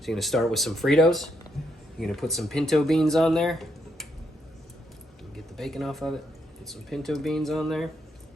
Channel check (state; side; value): normal; both; correlation 0.77